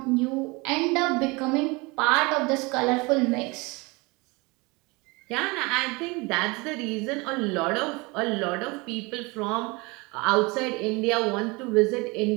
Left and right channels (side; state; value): left; quieter; 25.9 dB